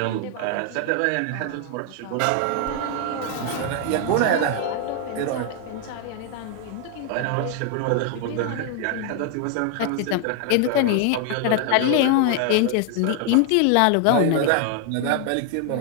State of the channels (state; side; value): different; both; correlation 0.00